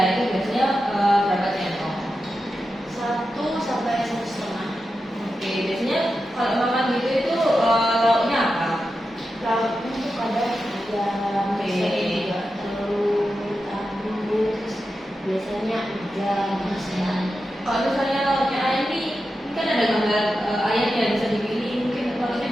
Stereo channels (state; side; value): normal; both; correlation 0.90